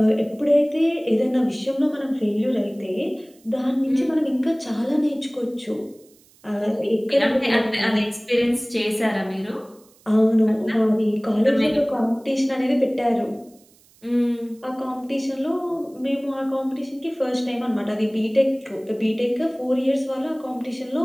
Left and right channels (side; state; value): right; noise; hiss, 30 dB below the sound